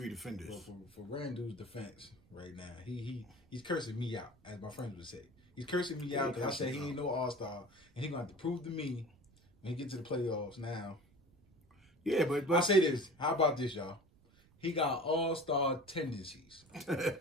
defenders. Well, for Randle's defense right now, he's cursing me out, as my friends would say. He's cursing me out because I said he ain't no all-star, and he's going to have to prove to me when he get to the playoffs now. Yeah, but I say this. How about this, y'all? He got all-star tendencies.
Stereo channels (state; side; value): noise; right; rumble, 29 dB below the sound